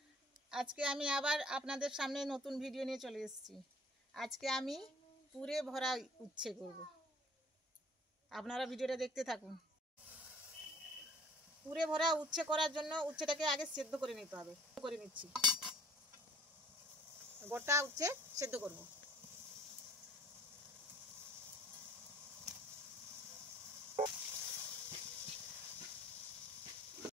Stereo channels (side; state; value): both; normal; correlation 0.52